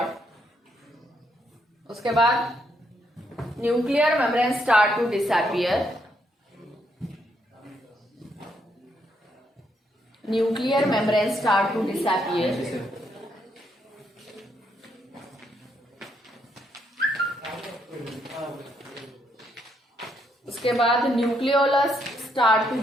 उसके बाद nuclear membrane start to disappear, nuclear membrane start to disappear. उसके बाद nucleolus start to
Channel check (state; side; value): normal; both; correlation 0.75